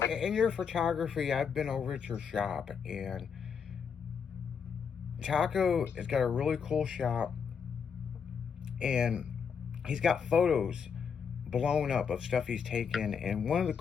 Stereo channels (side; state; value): right; quieter; 6.6 dB